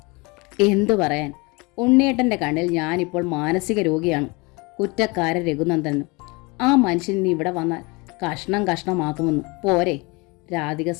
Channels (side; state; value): right; quieter; 26.9 dB